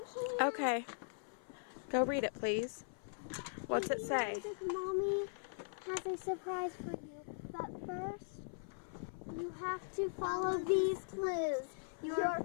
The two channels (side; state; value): right; silent; 51 dB below the other